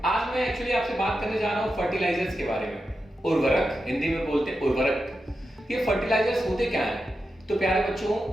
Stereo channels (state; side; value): normal; both; correlation 0.89